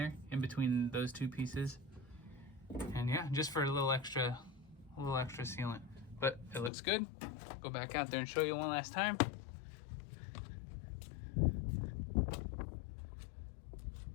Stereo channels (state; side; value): drops out; right; at 6.7 s